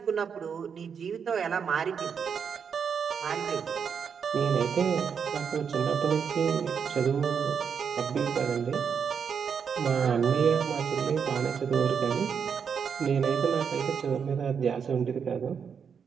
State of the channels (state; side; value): quieter; left; 6.8 dB